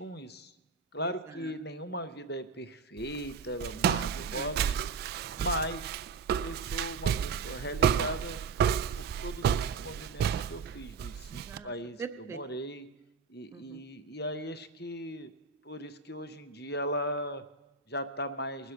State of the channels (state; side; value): quieter; left; 5.0 dB